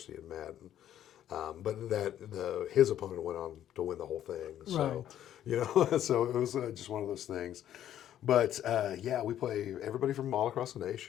in Madden. But his opponent went on to win the whole thing. So, so it was just one of those things. But yeah, we play everybody from all across the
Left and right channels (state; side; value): quieter; right; 11.3 dB